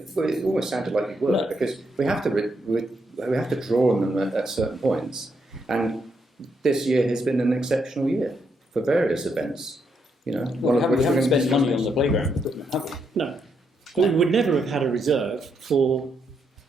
well, it almost sounded like you were, No. because we have to draw on them at certain points. And this year has been an exceptional year for various events. You know, Well, we haven't spent money on the playground equipment, have we? No. But we would never have had a reserve for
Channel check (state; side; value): normal; both; correlation 0.78